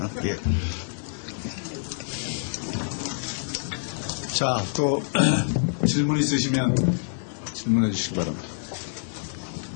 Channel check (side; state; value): right; silent; digital silence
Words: 예. 자, 또 질문 있으시면 질문해 주시기 바랍니다.